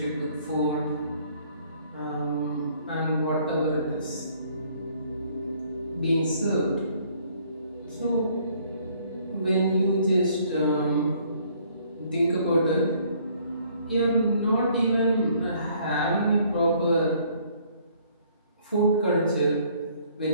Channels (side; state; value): both; inverted; correlation -0.62